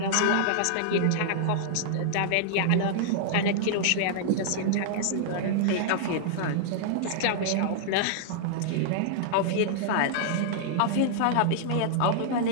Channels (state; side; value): different; both; correlation -0.01